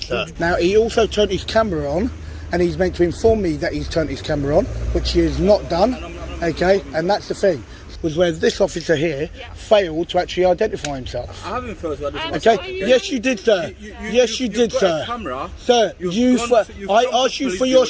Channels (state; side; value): identical; both; correlation 1.00